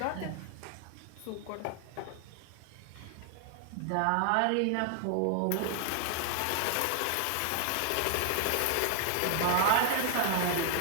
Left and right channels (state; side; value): different; both; correlation 0.00